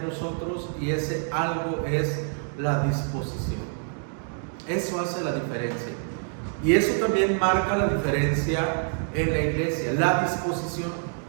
nosotros, y ese algo es la disposición. Eso hace la diferencia. Y eso también marca la diferencia en la iglesia, la disposición.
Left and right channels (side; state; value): left; silent; 61 dB below the other